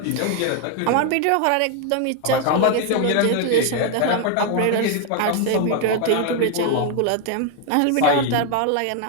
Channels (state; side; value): different; both; correlation 0.01